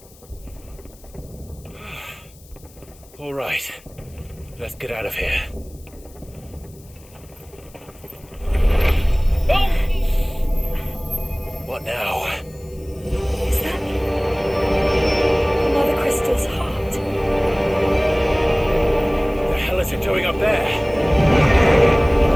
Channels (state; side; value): noise; left; hiss, 26 dB below the sound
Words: All right. Let's get out of here. Oh! What now? Is that Mother Crystal's heart? The hell is it doing up there?